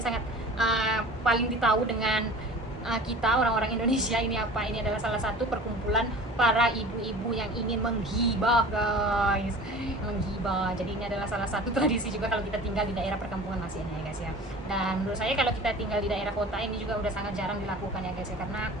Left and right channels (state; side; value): normal; both; correlation 0.41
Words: sangat paling ditahu dengan kita orang-orang Indonesia. Ini apa? Ini adalah salah satu perkumpulan para ibu-ibu yang ingin menghibah guys, menghibah. Jadi ini adalah salah satu tradisi juga kalau kita tinggal di daerah perkampungan masih ya guys ya. Dan menurut saya kalau kita tinggal di daerah kota ini juga udah sangat jarang dilakukan ya guys ya, karena